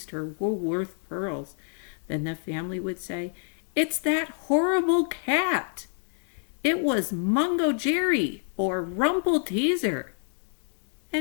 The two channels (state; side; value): silent; right; 56 dB below the other